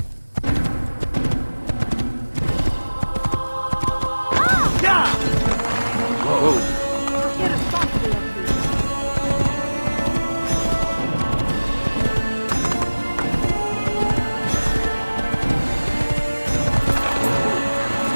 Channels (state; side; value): inverted; both; correlation -1.00